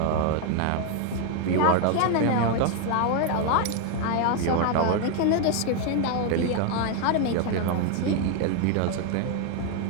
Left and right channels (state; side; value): different; both; correlation 0.01